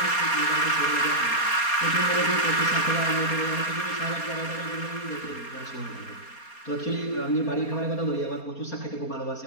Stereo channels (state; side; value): late; right; 4.3 ms